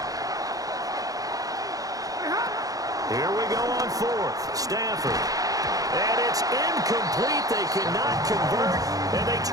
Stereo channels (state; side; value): late; left; 0.17 ms